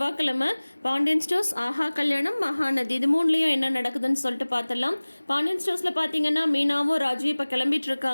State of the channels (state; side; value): inverted; both; correlation -1.00